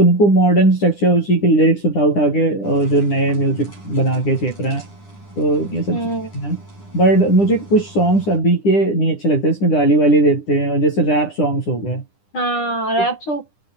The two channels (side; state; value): right; late; 9.9 ms